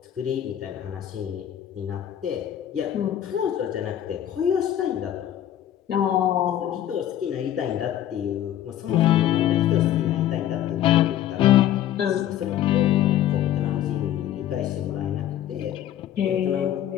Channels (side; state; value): right; quieter; 11.5 dB